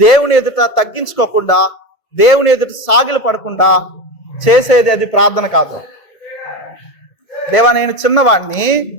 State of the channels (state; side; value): late; right; 1.7 ms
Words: దేవుని ఎదుట తగ్గించుకోకుండా, దేవుని ఎదుట సాగిలు పడకుండా చేసేది అది ప్రార్థన కాదు. దేవా నేను చిన్నవాడిని,